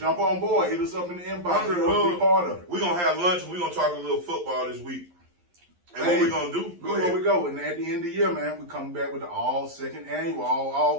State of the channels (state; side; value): late; left; 11 ms